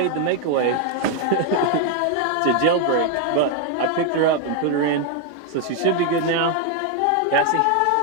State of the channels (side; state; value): both; different; correlation 0.01